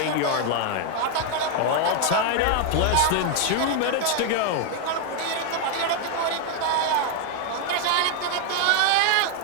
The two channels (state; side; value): different; both; correlation 0.01